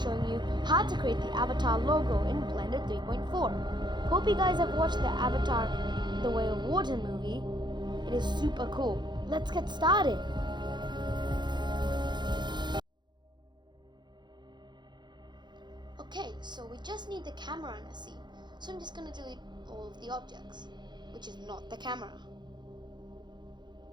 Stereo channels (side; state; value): left; late; 0.21 ms